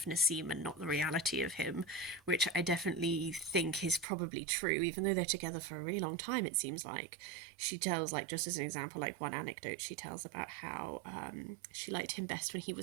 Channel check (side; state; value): left; drops out; at 4.0 s